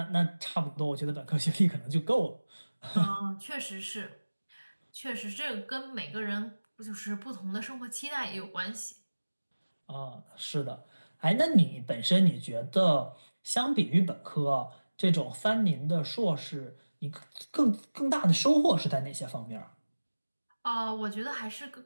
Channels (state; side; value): inverted; both; correlation -1.00